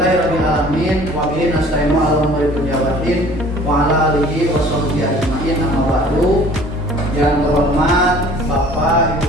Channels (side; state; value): both; normal; correlation 0.50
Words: Wa bihi nasta'inu ala umuri dunya waddin wa ala alihi wa sahbihi ajma'in. Amma ba'du. Yang terhormat Bapak,